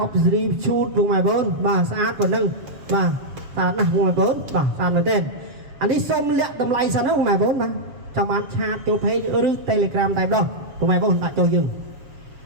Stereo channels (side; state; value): left; late; 7.3 ms